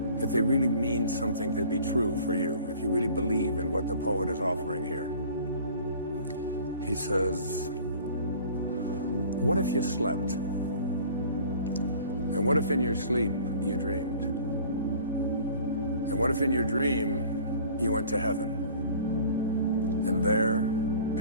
mean something to be true for you, if you really believe in what the poet is offering here. He says, what if you slept? And what if in your sleep you dreamed? And what if in your dream you went to heaven and there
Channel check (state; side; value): inverted; both; correlation -0.47